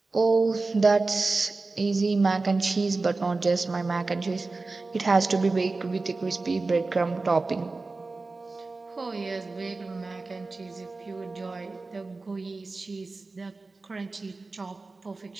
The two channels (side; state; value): left; quieter; 3.6 dB